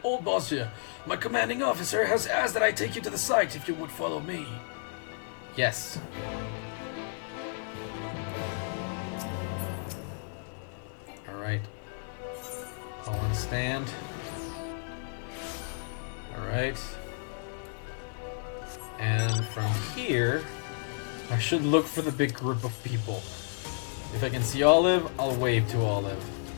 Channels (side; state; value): right; silent; digital silence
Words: Old Bozja. My commanding officer has asked that I take you to the site if you would follow me. Yes. Alright. I'll stand. Alright. And from here, I should look for the big group of people. If I can see Olive, I'll wave to Olive.